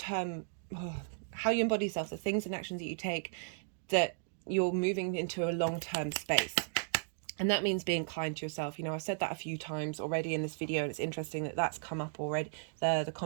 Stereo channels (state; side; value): silent; left; digital silence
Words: How you embody yourself, the things and actions that you take, that you're moving into a long-term space. And that means being kind to yourself. I've said that a few times already in this video, and it's interesting that that's come up already, the